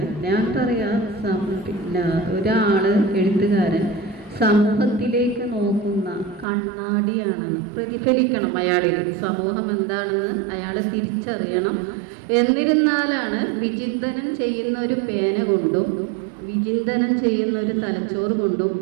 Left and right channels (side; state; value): left; drops out; at 6.5 s